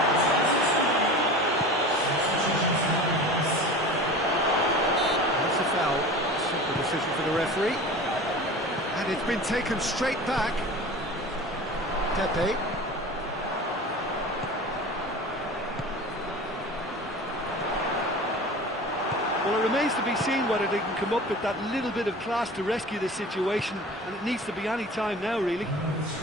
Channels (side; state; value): both; normal; correlation 0.37